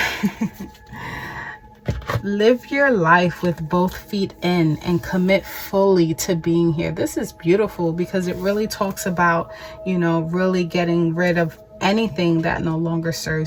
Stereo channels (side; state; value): both; identical; correlation 1.00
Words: live your life with both feet in and commit fully to being here. This is beautiful because it really talks about, you know, really getting rid of anything that no longer